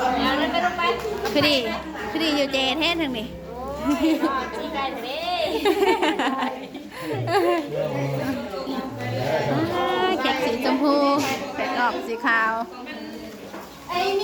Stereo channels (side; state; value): both; identical; correlation 1.00